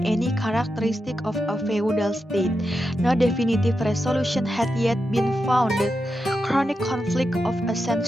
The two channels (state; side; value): normal; both; correlation 0.88